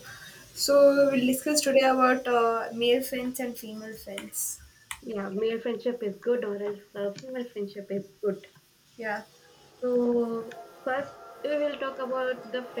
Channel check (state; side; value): identical; both; correlation 1.00